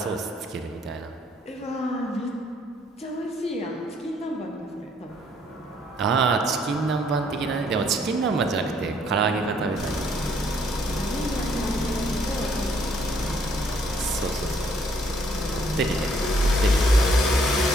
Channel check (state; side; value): normal; both; correlation 0.66